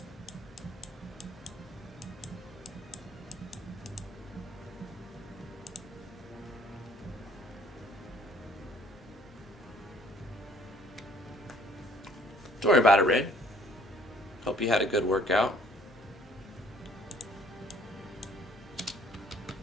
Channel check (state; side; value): normal; both; correlation 0.59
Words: Don't worry about it, Red. Hope you had a good workout.